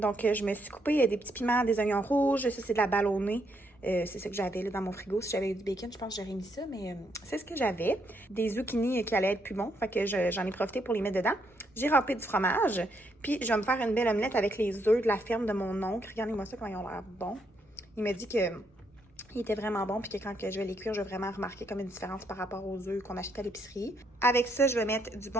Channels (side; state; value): both; normal; correlation 0.75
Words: je me suis coupé des petits piments, des oignons rouges. Ça, c'est de la ballonnée. C'est ça que j'avais là dans mon frigo. Si j'avais eu du bacon, je pense que j'aurais mis ça, mais c'est ce que j'avais. Des zucchini qui allaient être plus bons, fait que j'en ai profité pour les mettre dedans. J'ai râpé du fromage, puis je vais me faire une belle omelette avec les œufs de la ferme de mon oncle. Regardez-moi ça, comment ils ont l'air bons. Il m'a dit que il était vraiment bon, puis que quand je vais les cuire, je vais vraiment remarquer comme une différence par rapport aux œufs qu'on achète à l'épicerie. Avec ça, je vais mettre du